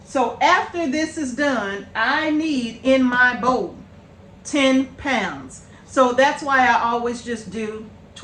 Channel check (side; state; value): both; identical; correlation 1.00